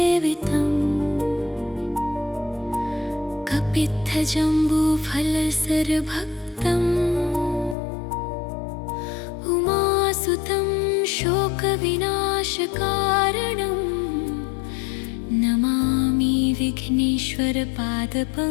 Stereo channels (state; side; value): drops out; right; at 7.8 s